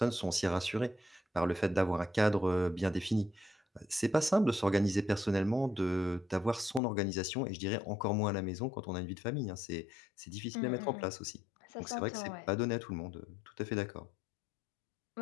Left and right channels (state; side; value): drops out; right; at 6.8 s